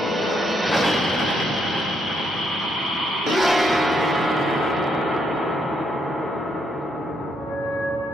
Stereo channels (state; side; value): normal; both; correlation 0.75